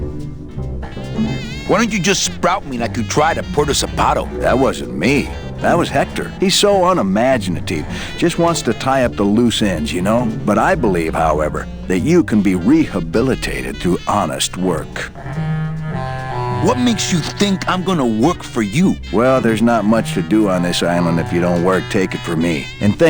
Why don't you just sprout me like you tried at Puerto Zapato? That wasn't me. That was Hector. He's so unimaginative. Just wants to tie up the loose ends, you know? But I believe, however, that you can be rehabilitated through honest work. What makes you think I'm gonna work for you? Well, there's not much to do on this island if you don't work, take it from me. And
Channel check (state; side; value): identical; both; correlation 1.00